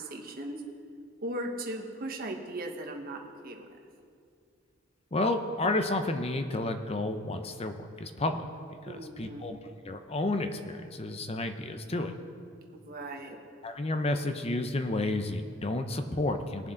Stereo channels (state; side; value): normal; both; correlation 0.47